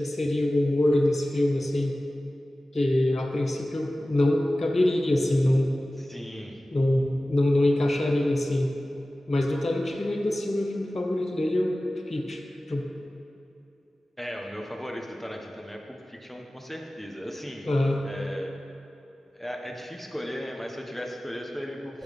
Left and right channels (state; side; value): normal; both; correlation 0.96